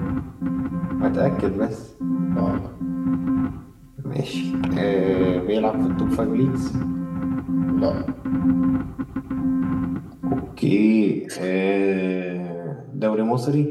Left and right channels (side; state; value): both; identical; correlation 1.00